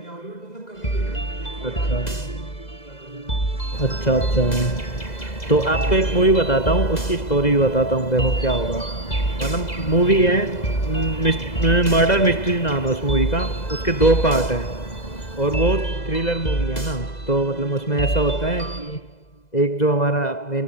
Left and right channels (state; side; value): late; right; 2.0 ms